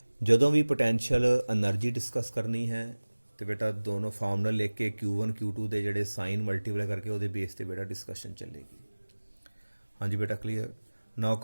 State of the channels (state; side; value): inverted; both; correlation -1.00